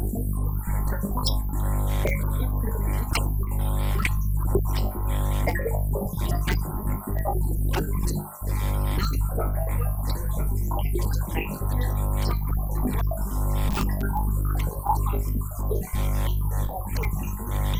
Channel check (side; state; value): both; identical; correlation 1.00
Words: always saying it's unfortunate, but if we, in the past, when we have a death case, night vigil, now because of COVID, we're no longer allowed to have night vigils. So for you to go and bury your loved one coming from Gauteng maybe,